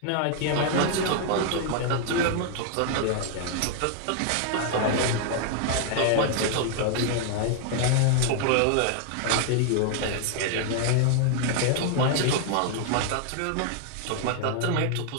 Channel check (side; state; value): both; different; correlation 0.00